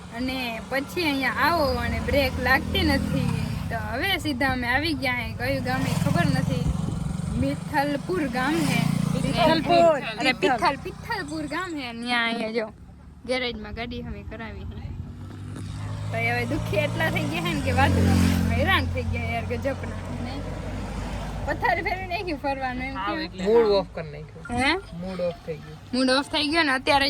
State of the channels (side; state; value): both; identical; correlation 1.00